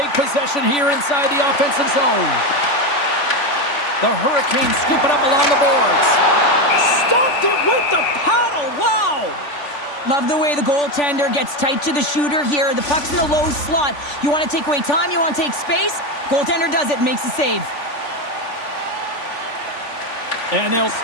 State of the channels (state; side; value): late; right; 3.5 ms